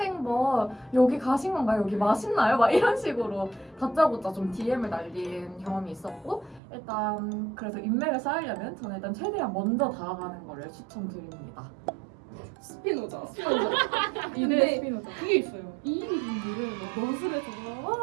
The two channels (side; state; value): left; drops out; at 6.6 s